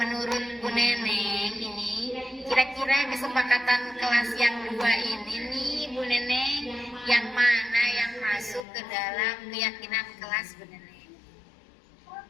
Bu Neneng ini, kira-kira kesepakatan kelas yang dua ini nih, Bu Neneng, yang mana yang masuk ke dalam keyakinan kelas Bu Neneng?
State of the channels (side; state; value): right; drops out; at 8.7 s